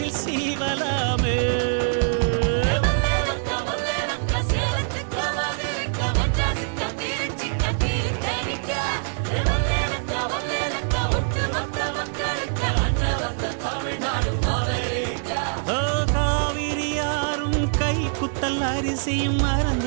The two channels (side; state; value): left; silent; 60 dB below the other